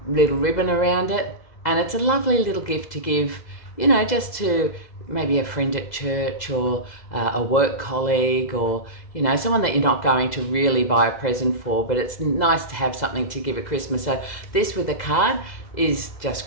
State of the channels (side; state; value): right; late; 2.0 ms